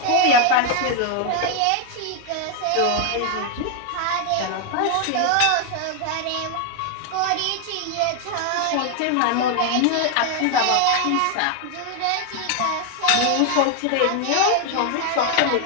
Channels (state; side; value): different; both; correlation 0.01